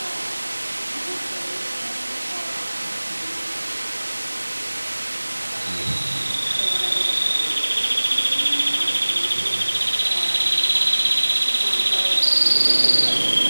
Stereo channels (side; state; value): both; inverted; correlation -1.00